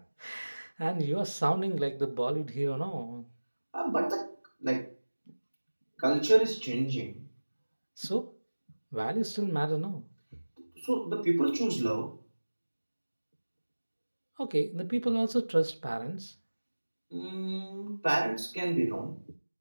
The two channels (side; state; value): both; inverted; correlation -1.00